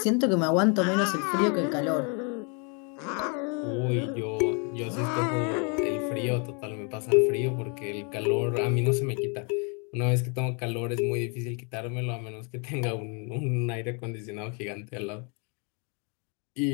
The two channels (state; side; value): quieter; right; 36.1 dB